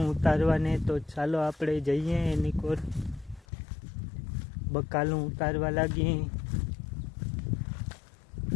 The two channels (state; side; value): drops out; right; at 3.5 s